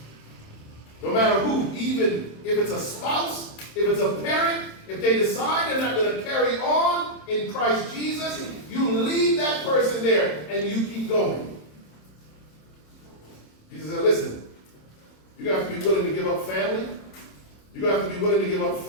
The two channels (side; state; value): right; late; 27 ms